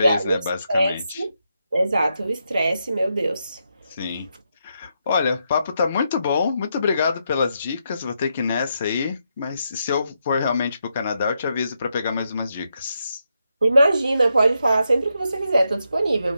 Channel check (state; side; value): inverted; both; correlation -0.82